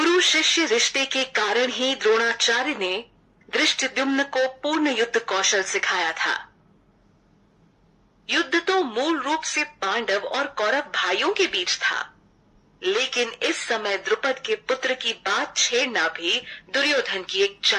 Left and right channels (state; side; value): identical; both; correlation 1.00